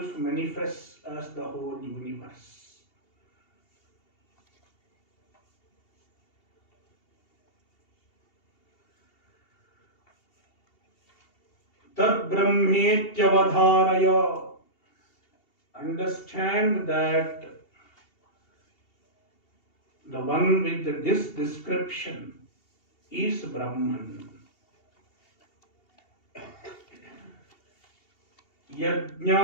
manifests as the whole universe. Tad Brahmetyavadharaya. Understand that the one with this description is Brahman.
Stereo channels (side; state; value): right; late; 2.7 ms